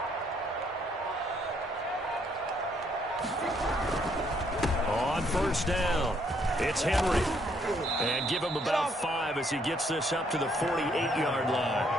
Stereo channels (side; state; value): both; normal; correlation 0.69